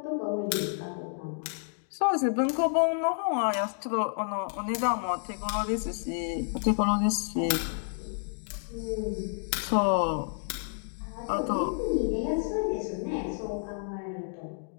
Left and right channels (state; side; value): silent; right; digital silence